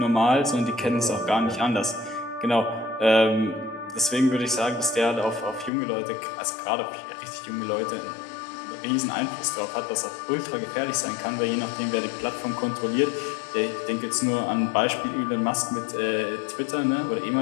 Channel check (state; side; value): drops out; right; at 5.7 s